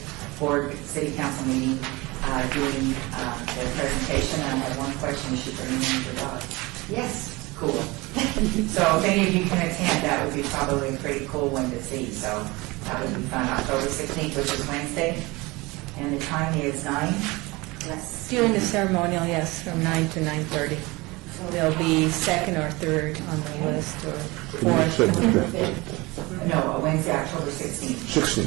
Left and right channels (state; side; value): quieter; left; 23.1 dB